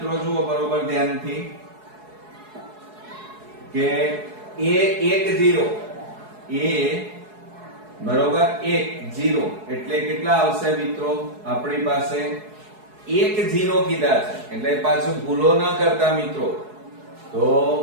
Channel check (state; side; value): late; left; 4.7 ms